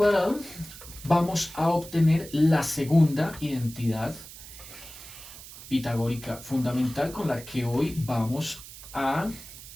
vamos a obtener la segunda identidad pitagórica fundamental con la que hoy vamos a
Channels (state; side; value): noise; right; hiss, 15 dB below the sound